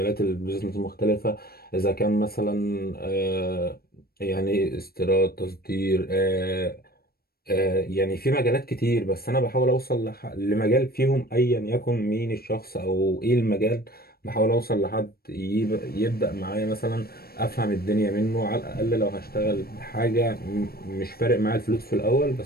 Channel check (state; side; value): late; right; 0.44 ms